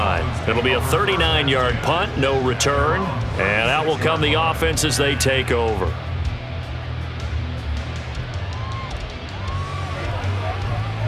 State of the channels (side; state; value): both; identical; correlation 1.00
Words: It'll be a 39-yard punt, no return. And out will come the offense as they take over.